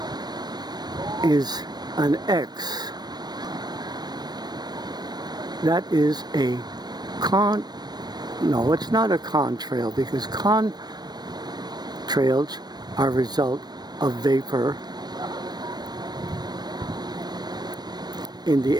is an X. That is a no, it's not a contrail, because contrails are a result of vapor in the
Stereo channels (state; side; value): late; left; 0.19 ms